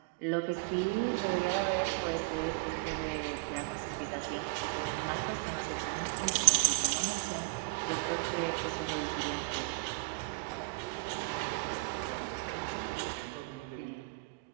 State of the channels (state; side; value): quieter; left; 26.6 dB